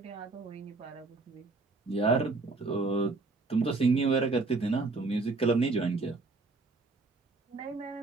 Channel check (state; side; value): quieter; left; 3.7 dB